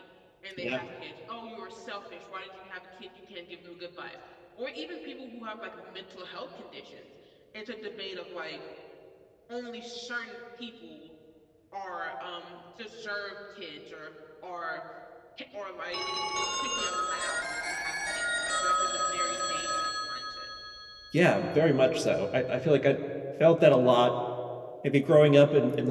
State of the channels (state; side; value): identical; both; correlation 1.00